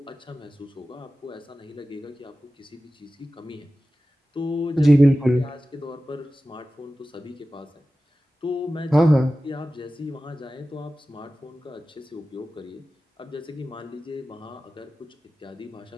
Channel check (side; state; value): both; normal; correlation 0.95